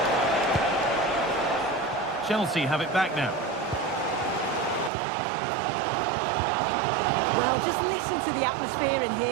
Chelsea have it back now. Well, just listen to the atmosphere in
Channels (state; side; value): drops out; left; at 4.9 s